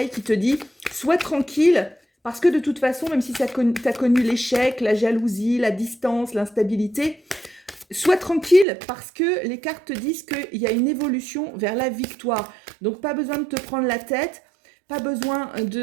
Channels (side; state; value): left; drops out; at 8.7 s